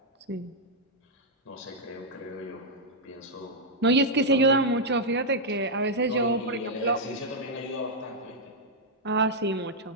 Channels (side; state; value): both; normal; correlation -0.05